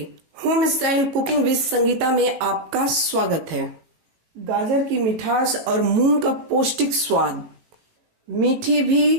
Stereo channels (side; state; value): left; late; 18 ms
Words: Home style cooking with Sangeeta में आपका स्वागत है। गाजर की मिठास और मूंग का पौष्टिक स्वाद, मीठी